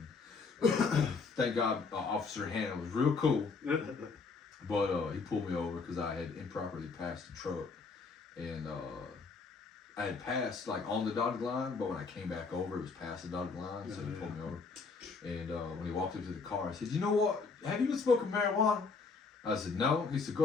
Thank God, Officer Hannah was real cool. But he pulled me over because I had improperly passed the truck. And I had passed like on the dotted line, but when I came back over, it was past the dotted line, so he pulled me over. And when he walked up to the car, I said, "You know what? Have you been smoking marijuana?" I said, "No." He said,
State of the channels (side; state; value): right; quieter; 4.6 dB